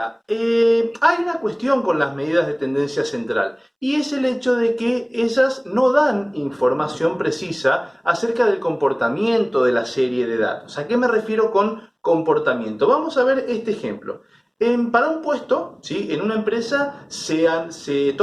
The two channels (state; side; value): identical; both; correlation 1.00